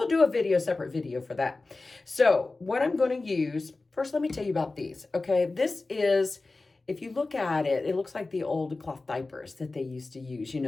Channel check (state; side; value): quieter; right; 3.4 dB